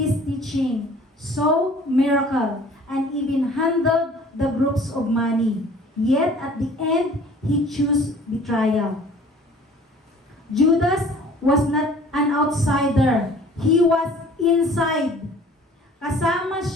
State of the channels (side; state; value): both; normal; correlation 0.50